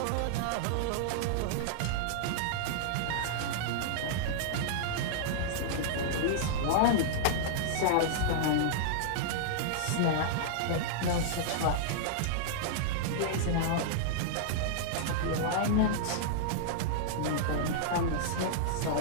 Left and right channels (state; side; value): different; both; correlation -0.02